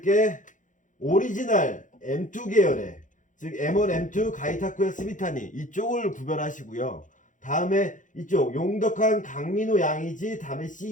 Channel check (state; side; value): late; right; 0.37 ms